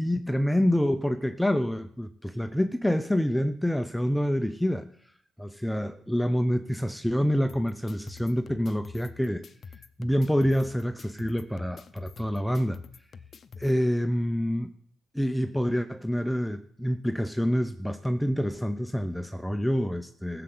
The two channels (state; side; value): normal; both; correlation 0.98